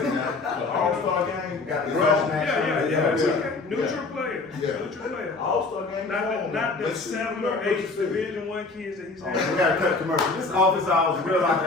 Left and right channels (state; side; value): quieter; right; 3.7 dB